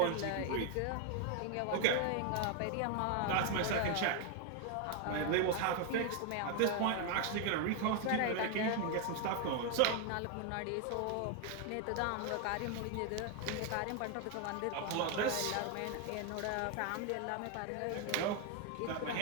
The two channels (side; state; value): both; different; correlation 0.01